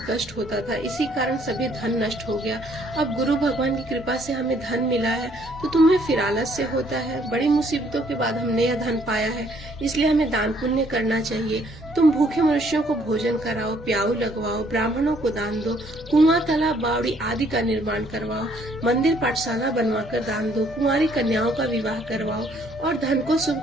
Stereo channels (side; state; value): both; normal; correlation 0.65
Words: कष्ट होता था, इसी कारण सभी धन नष्ट हो गया। अब गुरु भगवान की कृपा से हमें धन मिला है तो तुम्हें फिर आलस्य होता है। बड़ी मुसीबतों के बाद हमने यह धन पाया है, इसलिए हमें दान पुण्य करना चाहिए। तुम भूखे मनुष्यों को भोजन कराओ, प्याऊ लगवाओ, ब्राह्मणों को दान दो, कुआं, तालाब, बावड़ी आदि का निर्माण करवाओ, मंदिर पाठशाला बनवाकर दान दो, कुंवारी कन्याओं का विवाह करवाओ और धन को